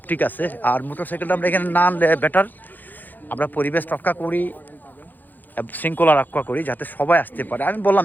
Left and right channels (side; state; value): right; late; 0.086 ms